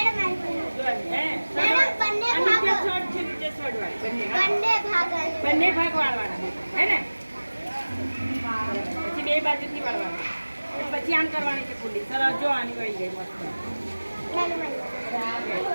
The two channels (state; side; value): inverted; both; correlation -1.00